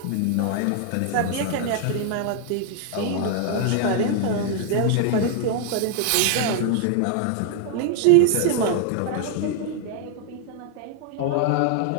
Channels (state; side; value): different; both; correlation 0.00